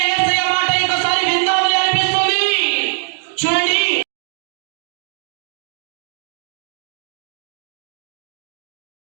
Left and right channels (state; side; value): silent; left; digital silence